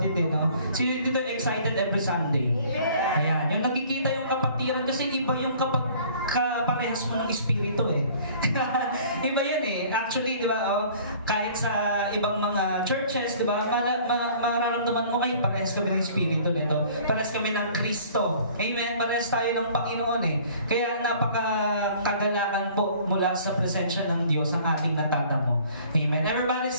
eh, no? Sino dito excited every Sunday? Ayan, yung nakikita yung kapatiran kasi iba yung kapag kaparehas mo ng espiritu eh. Iba yan eh. Actually, di ba, kahit sa ibang mga churches, di ba, mararamdaman mo kayo, parehas kami ng espiritu nito. Parehas kami ng Kristo. Amen? Parehas tayo ng Panginoon eh. Kaya napakakagalakan po mula sa presensya ng Diyos ang ating natatamo. Amen? Everybody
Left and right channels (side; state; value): both; inverted; correlation -0.52